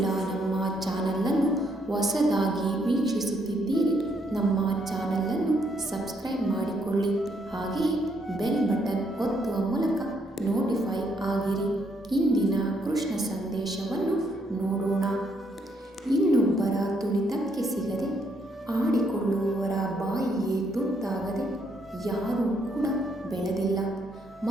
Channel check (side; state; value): both; normal; correlation 0.73